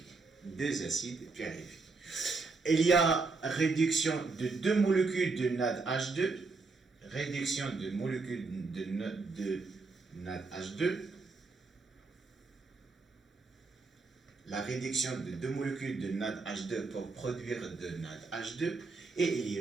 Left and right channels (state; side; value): quieter; left; 4.0 dB